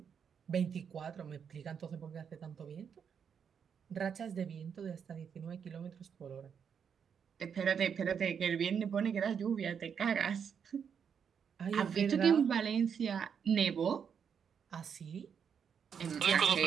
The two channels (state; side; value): quieter; left; 7.2 dB